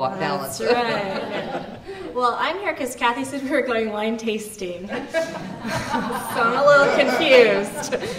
That's right. Well, I'm here because Kathy said we were going wine tasting. So I'm a little confused.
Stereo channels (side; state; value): both; identical; correlation 1.00